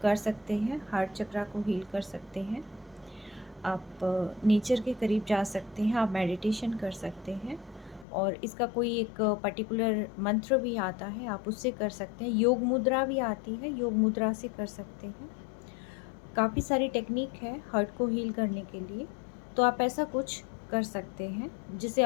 कर सकते हैं, हार्ट चक्रा को हील कर सकते हैं, आप नेचर के करीब जा सकते हैं, आप मेडिटेशन कर सकते हैं, और इसका कोई एक पर्टिकुलर मंत्र भी आता है, आप उससे कर सकते हैं। योग मुद्रा भी आती है, योग मुद्रा से कर सकते हैं। काफ़ी सारी टेक्निक है हार्ट को हील करने के लिए, तो आप ऐसा कुछ कर सकते हैं जिससे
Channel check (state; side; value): drops out; right; at 8.1 s